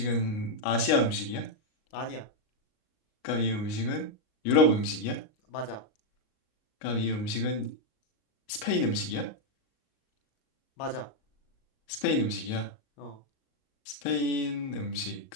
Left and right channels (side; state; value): right; late; 38 ms